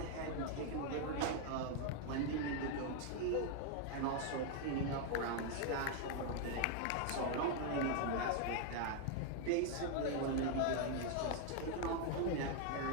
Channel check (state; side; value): different; both; correlation 0.00